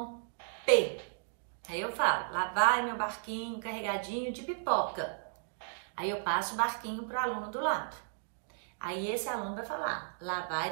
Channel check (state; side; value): silent; left; digital silence